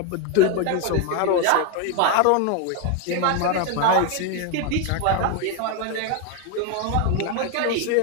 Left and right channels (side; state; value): both; different; correlation 0.01